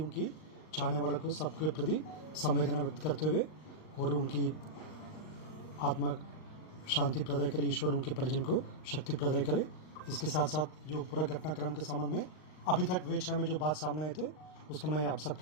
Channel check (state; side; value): late; right; 38 ms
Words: चाहने वालों को सबके प्रति संवेदना व्यक्त करते हुए और उनकी आत्मा शांति प्रदान करे, ईश्वर उनके परिजन को शक्ति प्रदान करे। इसके साथ साथ जो पूरा घटनाक्रम के संबंध में अभी तक वेक्षा में जो बात सामने आए थे उसको मैं आप